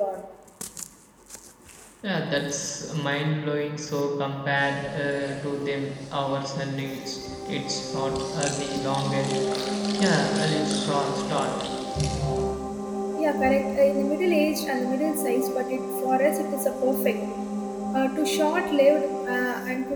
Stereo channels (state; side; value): identical; both; correlation 1.00